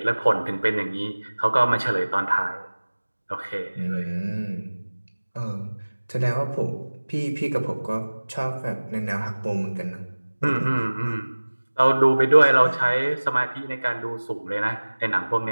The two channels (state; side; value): inverted; both; correlation -1.00